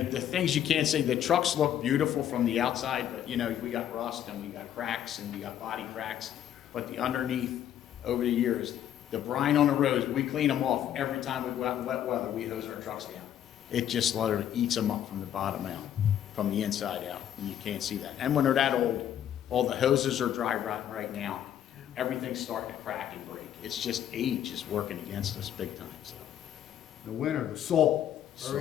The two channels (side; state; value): right; quieter; 10.6 dB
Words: things you can't say, the trucks look beautiful from the outside, but you know, we got rust and we got cracks and we got body cracks. But the underneath, over the years, the brine on the roads, we clean them off every time we go out in wet weather, we hose our trucks down. It just literally eats them up from the bottom out, from the inside out, and you can't see that. And when they're that old, all the hoses are dry rotting right now. Everything's starting to crack and break. It's just age is working against us big time, so. The winter, the salt,